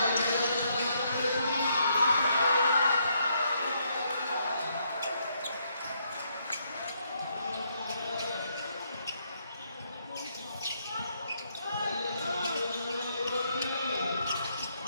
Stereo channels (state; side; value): inverted; both; correlation -0.74